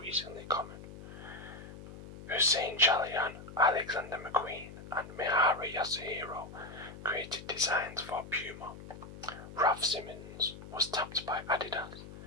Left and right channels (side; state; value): left; noise; hum, 14 dB below the sound